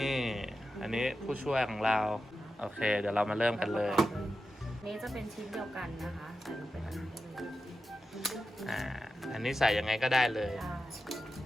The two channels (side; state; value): both; normal; correlation 0.91